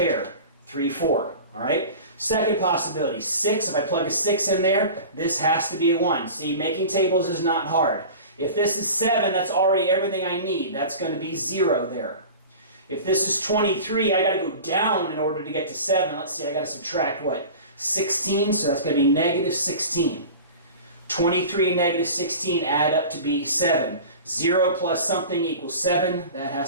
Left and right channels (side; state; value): both; inverted; correlation -0.36